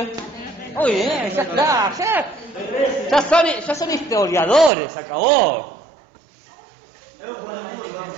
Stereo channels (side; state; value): left; drops out; at 4.7 s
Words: Muy bien, ya está, ya son historiadores, se acabó.